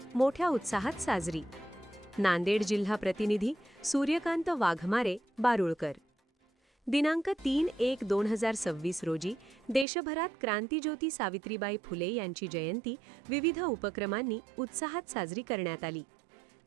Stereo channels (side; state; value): left; drops out; at 9.9 s